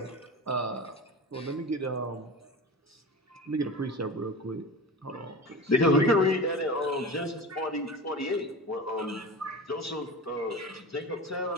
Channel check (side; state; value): both; normal; correlation 0.30